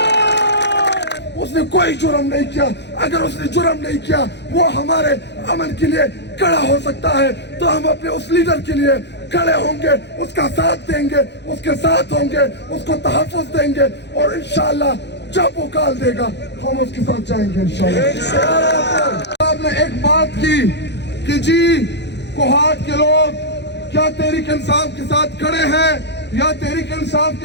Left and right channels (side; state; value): right; late; 0.50 ms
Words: اس نے کوئی جرم نہیں کیا. اگر اس نے جرم نہیں کیا وہ ہمارے امن کے لیے کھڑا ہو سکتا ہے تو ہم اپنے اس لیڈر کے لیے کھڑے ہوں گے, اس کا ساتھ دیں گے, اس کے ساتھ ہوں گے, اس کو تحفظ دیں گے اور انشاءاللہ جب وہ کال دے گا ہم اس کے ساتھ جائیں گے انشاءاللہ. آپ نے ایک بات کی کہ جی کوہاٹ کے لوگ کیا تحریک انصاف کے ساتھ کھڑے ہیں یا تحریک انصاف